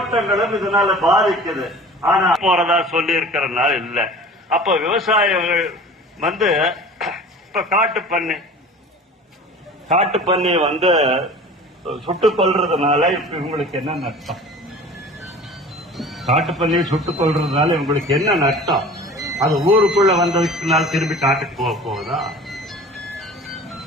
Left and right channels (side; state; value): both; normal; correlation 0.41